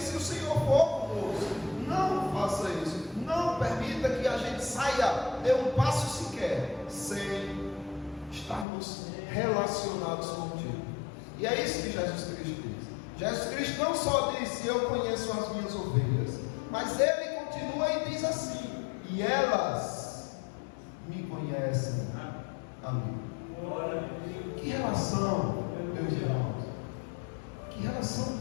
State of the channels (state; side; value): drops out; right; at 8.7 s